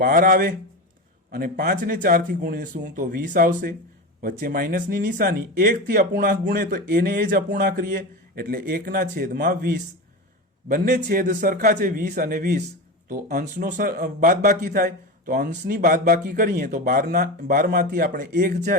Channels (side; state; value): both; normal; correlation 0.23